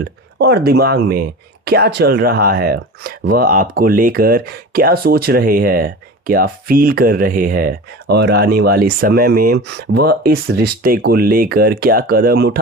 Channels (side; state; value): both; normal; correlation 0.33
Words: और दिमाग में क्या चल रहा है, वह आपको लेकर क्या सोच रहे हैं, क्या फील कर रहे हैं और आने वाले समय में वह इस रिश्ते को लेकर क्या कदम